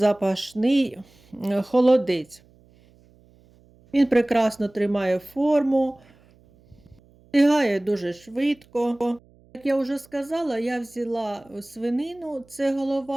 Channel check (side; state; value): right; noise; hum, 29 dB below the sound